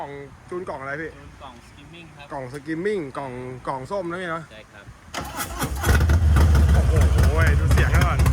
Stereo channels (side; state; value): both; identical; correlation 1.00